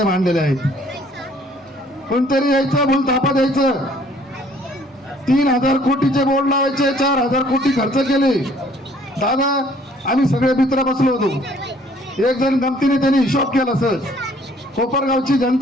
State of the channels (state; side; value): normal; both; correlation 0.59